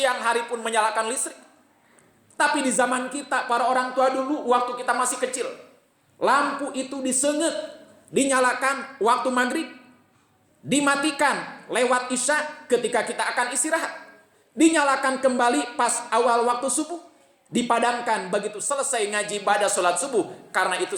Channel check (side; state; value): both; identical; correlation 1.00